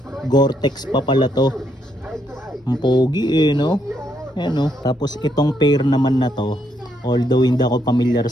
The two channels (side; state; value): both; normal; correlation 0.75